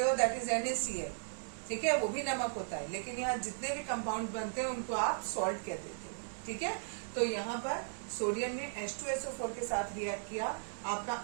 हो दैट इज NaCl, ठीक है, वो भी नमक होता है, लेकिन यहाँ जितने भी कंपाउंड बनते हैं उनको आप सॉल्ट कह देते हो, ठीक है। तो यहाँ पर सोडियम ने H2SO4 के साथ रिएक्ट किया, आपका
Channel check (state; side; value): silent; left; digital silence